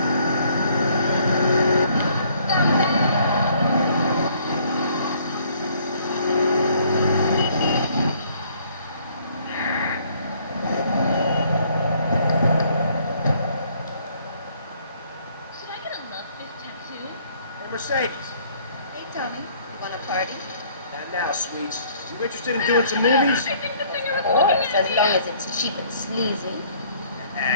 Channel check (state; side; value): inverted; both; correlation -0.62